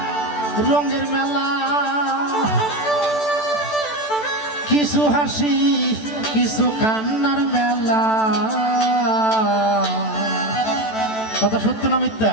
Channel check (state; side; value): late; right; 14 ms